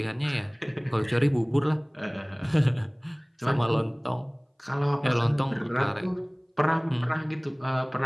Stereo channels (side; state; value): both; identical; correlation 1.00